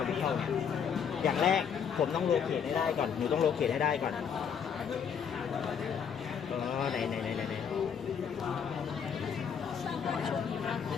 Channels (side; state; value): right; quieter; 7.3 dB